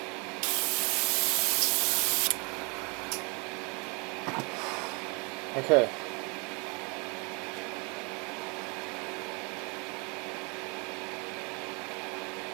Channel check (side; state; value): left; quieter; 31.5 dB